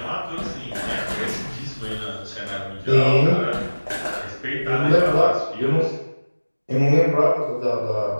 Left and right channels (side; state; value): both; inverted; correlation -1.00